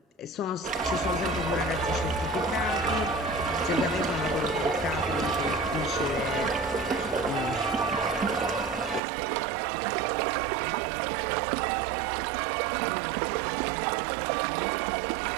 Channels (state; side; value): drops out; left; at 9.0 s